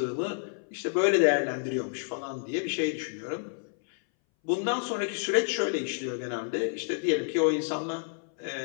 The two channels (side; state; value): right; silent; 58 dB below the other